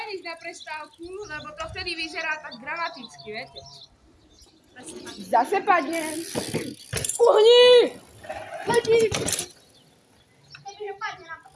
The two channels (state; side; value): identical; both; correlation 1.00